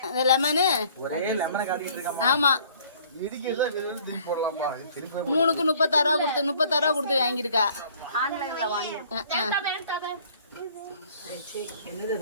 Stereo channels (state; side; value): inverted; both; correlation -0.56